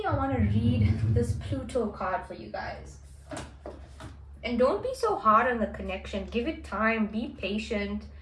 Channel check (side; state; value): both; identical; correlation 1.00